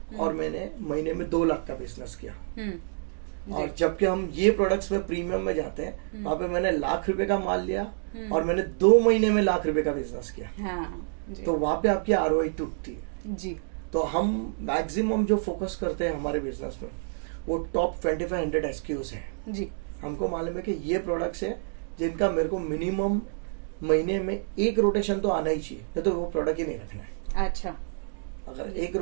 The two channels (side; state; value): left; silent; digital silence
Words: और मैंने महीने में 2 लाख का बिजनेस किया। और जबकि हम ये प्रोडक्ट्स में प्रीमियम में जाते हैं, वहां पे मैंने ₹1,00,000 का माल लिया और मैंने 2 महीने में ₹1,00,000 का बिजनेस किया। तो वहां पे आपकी ROI टूटती है जी। तो हम मैक्सिमम जो फोकस करते हैं हमारे बिजनेस में, वो टॉप 2500 SKUs है जी। हमको मालूम है कि ये प्रोडक्ट्स है जिनका मेरे को मिनिमम महीने में 1 रोटेशन तो आना ही चाहिए, तो वो प्रोडक्ट ही नहीं रखना है। अच्छा, अगर 1